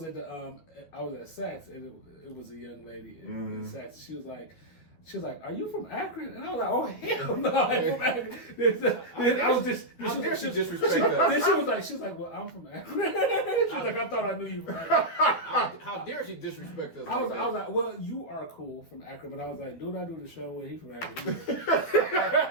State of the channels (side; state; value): right; late; 12 ms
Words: and it was a young lady in Saks. She was like, "Are you from Akron?" And I was like, "Oh hell no, I'm from Akron." I was just disrespect us. Then she was like, "Well, I'm from Akron." She was like, "I thought I knew you from Akron." How dare she disrespect us? I was like, "Well, you are cool from Akron," but I was like, "Dude, I do the show where he from Akron."